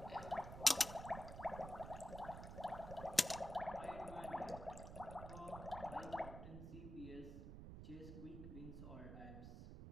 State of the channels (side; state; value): right; noise; rumble, 9 dB below the sound